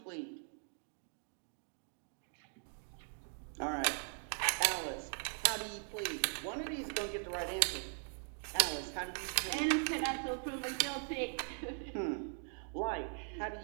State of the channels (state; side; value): silent; left; 51 dB below the other